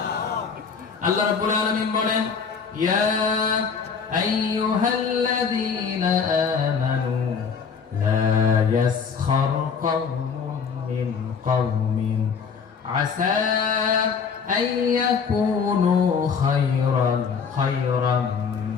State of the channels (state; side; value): quieter; right; 6.0 dB